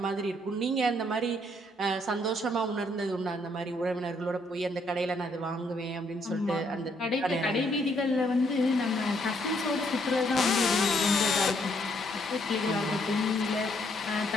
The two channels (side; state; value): both; normal; correlation 0.70